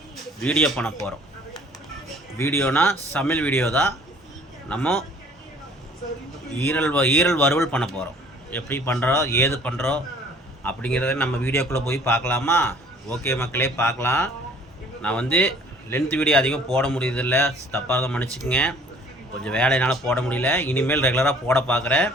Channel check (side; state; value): both; normal; correlation 0.53